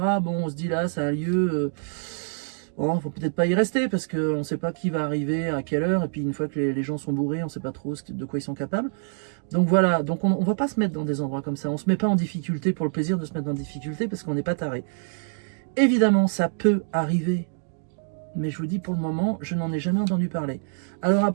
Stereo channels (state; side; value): silent; left; digital silence